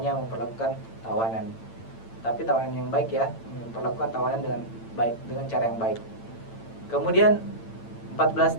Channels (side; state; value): right; late; 8.9 ms